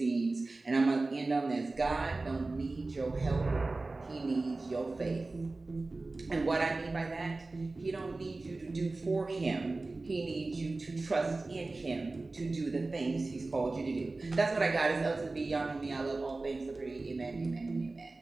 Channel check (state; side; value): quieter; left; 3.3 dB